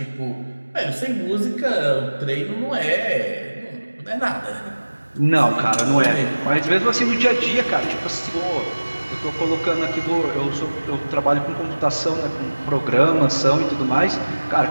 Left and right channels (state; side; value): inverted; both; correlation -1.00